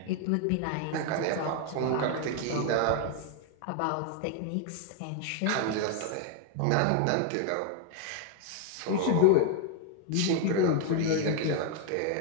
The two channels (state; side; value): different; both; correlation 0.00